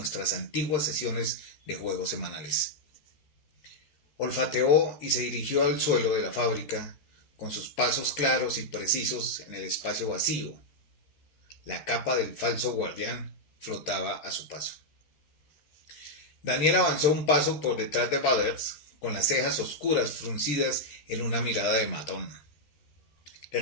antiguas sesiones de juegos semanales. Olfateó y se dirigió al suelo de la fábrica, con sus pasos claros y precisos en el espacio vacío. La capa del falso guardián flotaba a su paso. Daniel avanzó un paso por detrás de Butters, con las cejas oscuras fruncidas en una mirada de matón. Le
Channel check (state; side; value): late; right; 13 ms